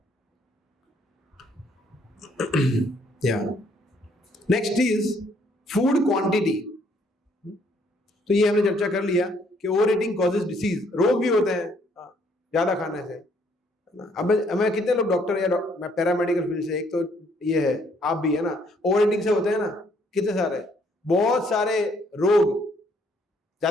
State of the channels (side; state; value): both; normal; correlation 0.67